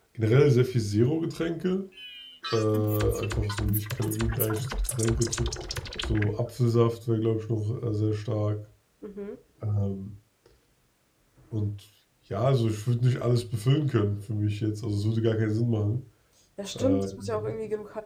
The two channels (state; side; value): identical; both; correlation 1.00